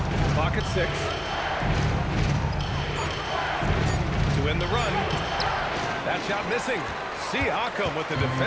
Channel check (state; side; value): identical; both; correlation 1.00